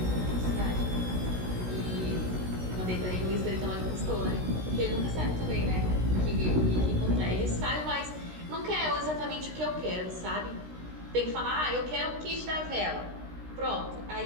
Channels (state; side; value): late; left; 16 ms